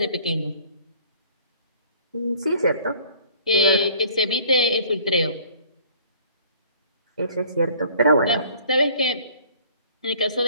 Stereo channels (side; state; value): both; inverted; correlation -0.53